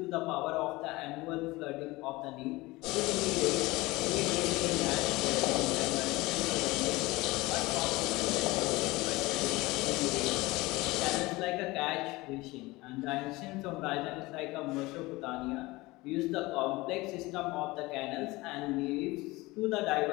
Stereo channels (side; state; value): right; quieter; 21.3 dB